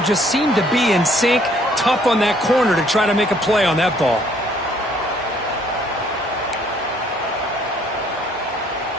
seem to be in sync. Tough on that corner to try to make a play on that ball.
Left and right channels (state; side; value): normal; both; correlation 0.63